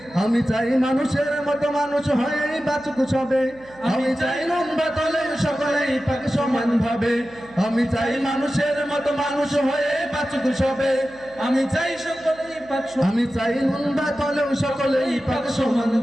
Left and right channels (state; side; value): noise; right; hum, 24 dB below the sound